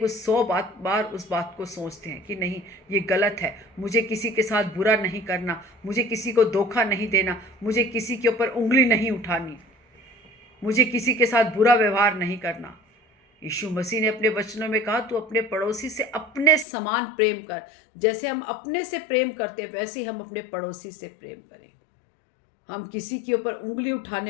उस 100 बार उस बात को सोचते हैं कि नहीं, ये गलत है, मुझे किसी के साथ बुरा नहीं करना, मुझे किसी को धोखा नहीं देना, मुझे किसी के ऊपर उंगली नहीं उठानी, मुझे किसी के साथ बुरा व्यवहार नहीं करना। यीशु मसीह ने अपने वचनों में कहा, तू अपने पड़ोसी से अपने समान प्रेम कर। जैसे हम अपने से प्रेम करते हैं वैसे ही हम अपने पड़ोसी से प्रेम करें। हम किसी के ऊपर उंगली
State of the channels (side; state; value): right; drops out; at 16.7 s